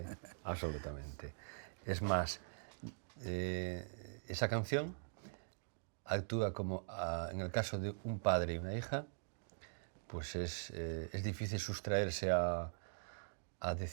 Es más, esa canción actúa como, en el caso de un padre y una hija, pues es difícil sustraerse a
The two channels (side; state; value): left; silent; digital silence